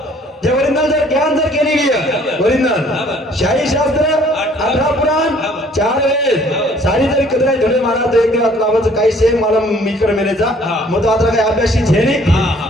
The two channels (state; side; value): normal; both; correlation 0.58